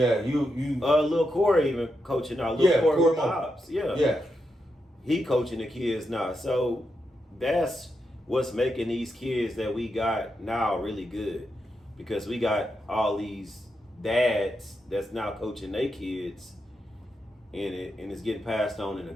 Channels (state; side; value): normal; both; correlation 0.85